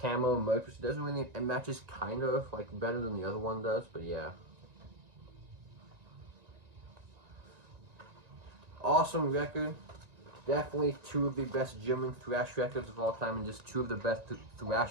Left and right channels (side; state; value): left; late; 1.9 ms